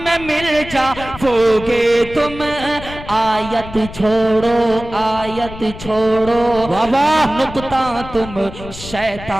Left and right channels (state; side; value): noise; left; rumble, 13 dB below the sound